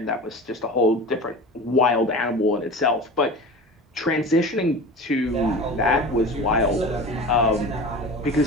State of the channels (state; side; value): normal; both; correlation 0.34